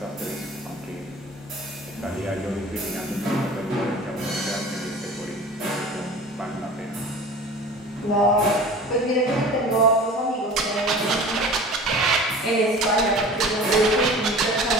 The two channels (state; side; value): normal; both; correlation 0.40